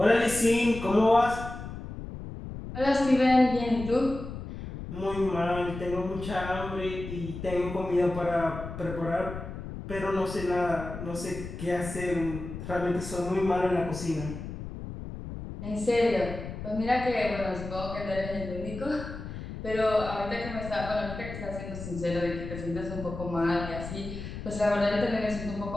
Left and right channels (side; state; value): left; noise; rumble, 9 dB below the sound